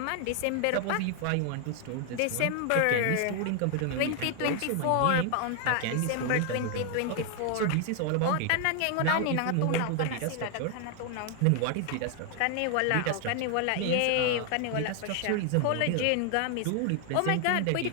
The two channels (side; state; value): both; different; correlation 0.00